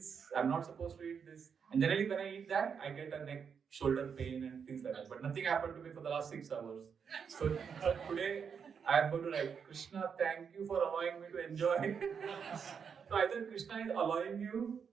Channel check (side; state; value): left; quieter; 6.7 dB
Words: I'm not supposed to eat this. And generally when I eat that, I get a neck, shoulder pain and things like that. But nothing happened to me for the last 6 hours. So today, I am going to write, Krishna, thank you for allowing me to enjoy. So either Krishna is allowing you,